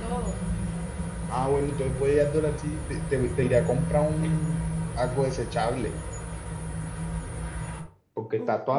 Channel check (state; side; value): identical; both; correlation 1.00